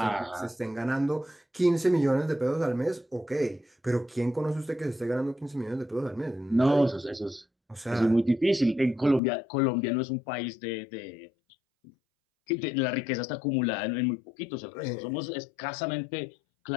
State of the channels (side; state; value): right; drops out; at 9.2 s